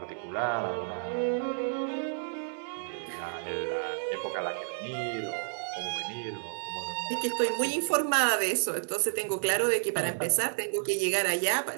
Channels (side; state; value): left; silent; digital silence